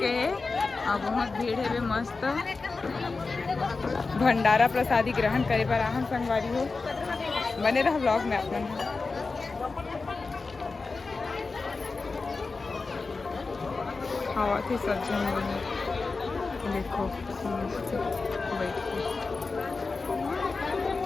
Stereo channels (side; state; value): right; quieter; 4.1 dB